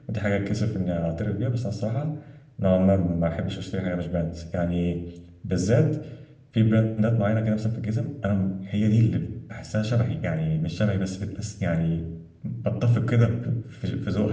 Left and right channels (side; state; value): both; identical; correlation 1.00